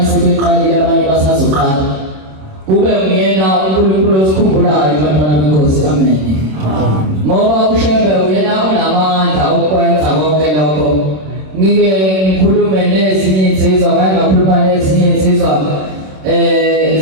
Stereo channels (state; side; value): late; left; 26 ms